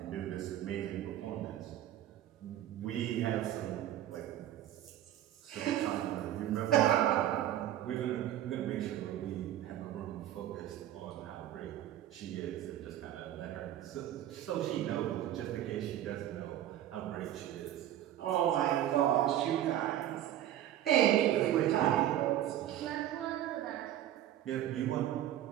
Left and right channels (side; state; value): left; quieter; 12.3 dB